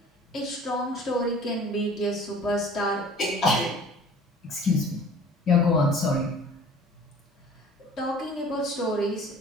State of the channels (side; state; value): both; normal; correlation 0.47